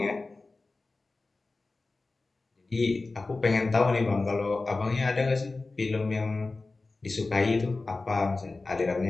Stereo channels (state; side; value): quieter; right; 3.5 dB